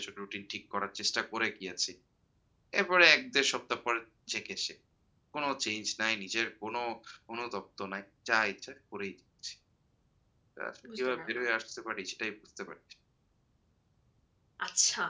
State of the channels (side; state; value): both; identical; correlation 1.00